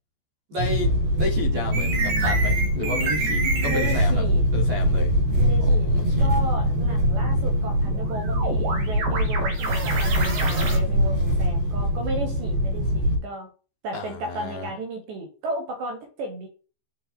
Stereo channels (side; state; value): left; late; 14 ms